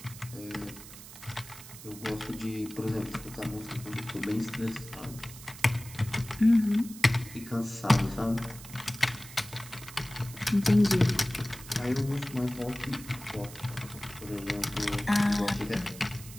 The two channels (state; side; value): noise; right; hiss, 16 dB below the sound